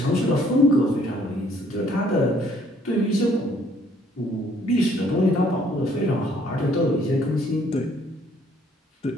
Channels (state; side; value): normal; both; correlation 0.63